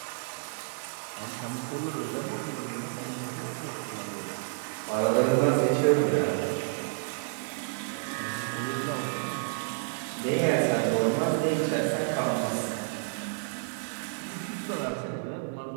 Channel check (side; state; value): left; silent; digital silence